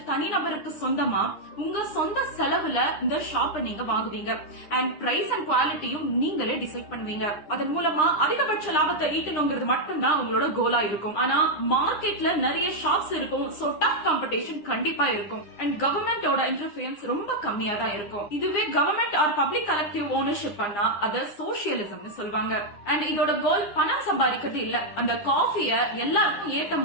தனிநபருக்கு சொந்தமா உங்க சொந்த செலவுல இந்த ஷாப்பை நீங்க வாங்குவீங்க. அண்ட் பிரைஸ் அண்ட் குவாலிட்டியும் நீங்களே டிசைட் பண்ணுவீங்க. அதன் மூலமா அதிகபட்ச லாபத்தை ஈட்டணுங்கிறது மட்டும்தான் உங்களோட கோலா இருக்கும். ஆனா மார்க்கெட்ல நிறைய ஷாப்ஸ் இருக்கும். சோ டஃப் காம்படிஷன் கண்டிப்பா இருக்கும். அண்ட் கவர்மெண்டோட இன்டர்ஃபியரன்ஸ் ரொம்ப கம்மியா தான் இருக்கும். இதுவே government or public collective ownership பண்ணா அத சோசியலிசம்னு சொல்வாங்க. அண்ட் இதோட கோல் பணம் சம்பாதிக்கிறது இல்ல, அந்த காஃபிய எல்லாருக்கும் ஏத்த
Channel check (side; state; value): right; late; 9.8 ms